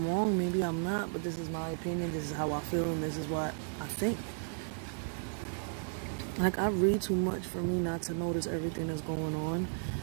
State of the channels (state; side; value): silent; left; digital silence